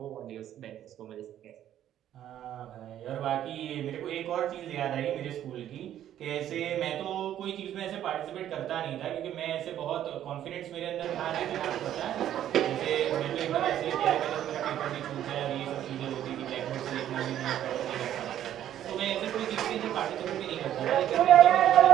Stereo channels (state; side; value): quieter; left; 11.3 dB